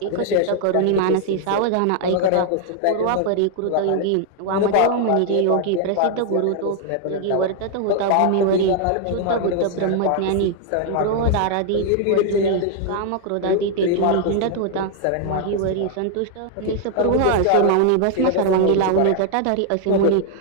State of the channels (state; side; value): different; both; correlation 0.00